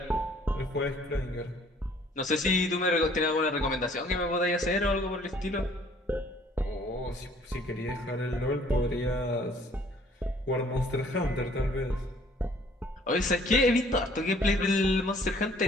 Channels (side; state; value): both; normal; correlation 0.58